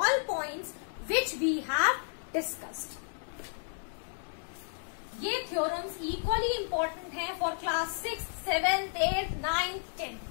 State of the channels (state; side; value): silent; right; digital silence